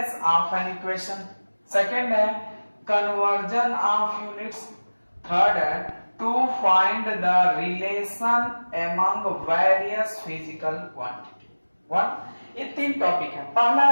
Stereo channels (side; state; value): both; inverted; correlation -1.00